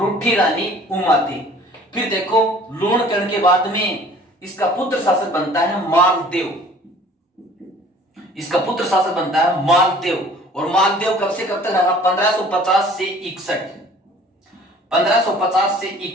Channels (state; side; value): normal; both; correlation 0.50